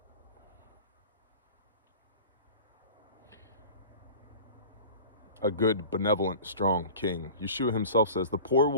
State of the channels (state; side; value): inverted; both; correlation -0.39